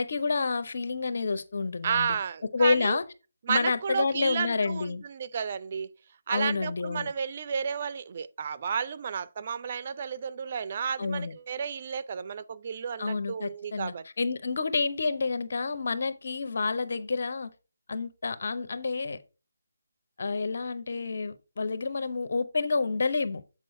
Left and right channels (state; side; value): inverted; both; correlation -0.85